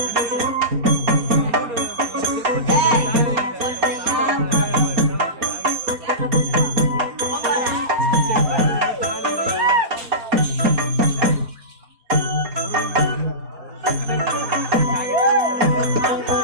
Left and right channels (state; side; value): late; left; 4.3 ms